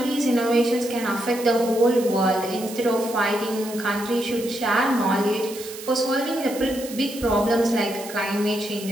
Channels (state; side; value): noise; right; hiss, 13 dB below the sound